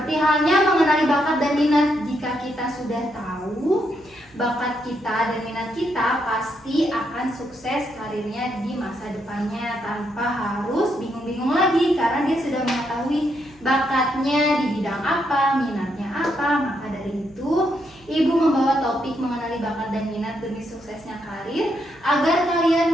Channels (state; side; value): noise; right; hum, 28 dB below the sound